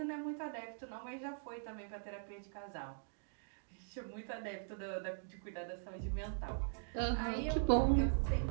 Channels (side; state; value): left; silent; digital silence